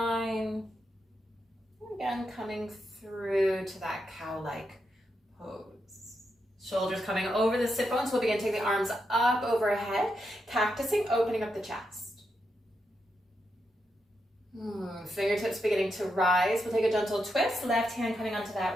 Again, coming through to that cow-like pose. Shoulders coming over the sit bones. We'll begin to take the arms up overhead, cactusing, opening up the chest. Fingertips beginning to rise. We'll take a gentle twist. Left hand coming onto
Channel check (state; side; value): normal; both; correlation 0.84